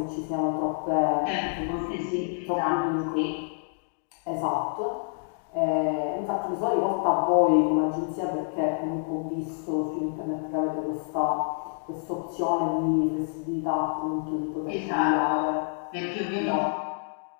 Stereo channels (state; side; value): silent; right; 60 dB below the other